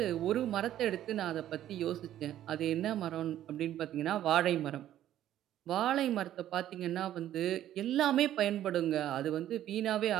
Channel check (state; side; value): quieter; left; 12.1 dB